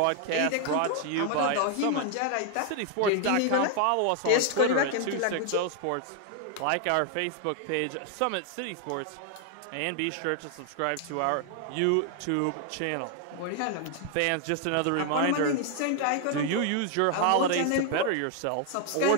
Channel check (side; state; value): both; different; correlation 0.00